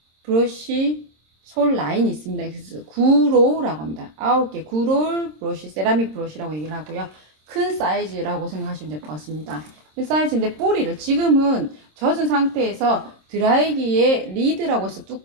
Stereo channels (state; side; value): late; left; 26 ms